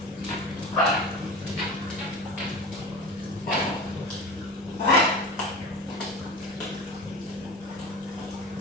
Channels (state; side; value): normal; both; correlation 0.31